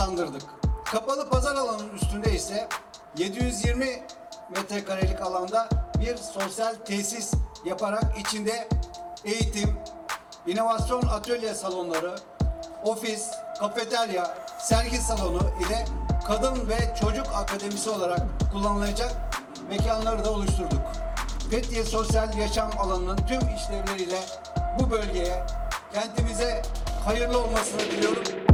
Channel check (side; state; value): both; identical; correlation 1.00